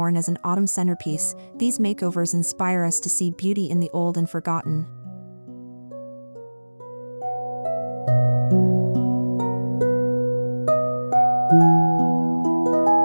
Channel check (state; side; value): inverted; both; correlation -1.00